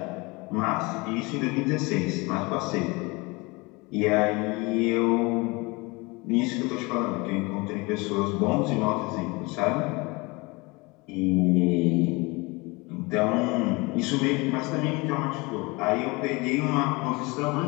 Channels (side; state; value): right; quieter; 25.5 dB